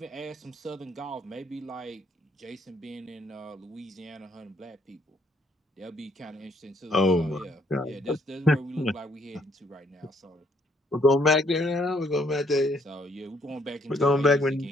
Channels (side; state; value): both; normal; correlation 0.68